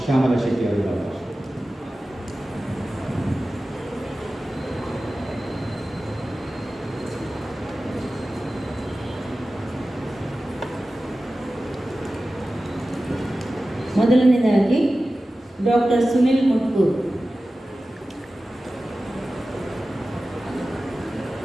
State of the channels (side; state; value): both; normal; correlation 0.95